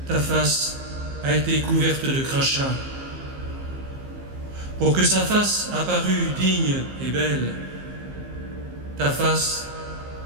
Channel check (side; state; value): left; late; 15 ms